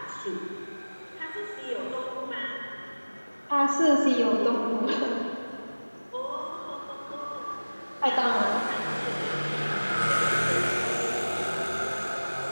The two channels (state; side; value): inverted; both; correlation -1.00